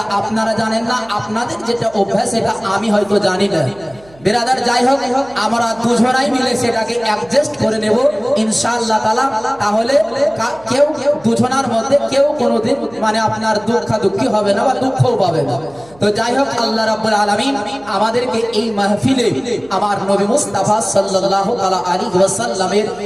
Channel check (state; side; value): noise; right; hum, 26 dB below the sound